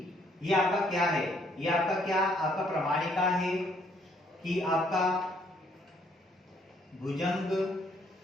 ये आपका क्या है, ये आपका क्या, आपका प्रमाणिका है कि आपका भुजंग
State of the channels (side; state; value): both; normal; correlation 0.67